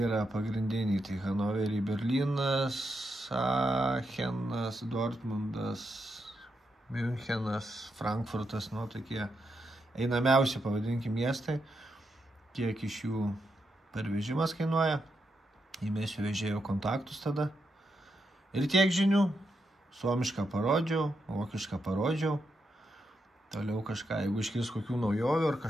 pagrindiniai. Tai Hanoverį, Berlynas, Aachenas, Dortmundas, Münchenas, Frankfurtas, tokie einamiausi, pavadinkim, miestai. Kiek iš jų pervežimas kainuoja. Įmėsiu vežėjo kontaktus tada. Ir tiek žinių. Suomišką parodžiau, vokišką parodžiau. Toliau kažką, jeigu iškils kokių naujovių ar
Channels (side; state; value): both; normal; correlation 0.83